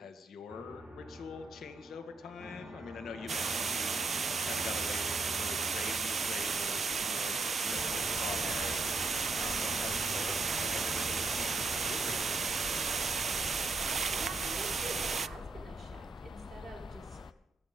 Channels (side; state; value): left; quieter; 3.6 dB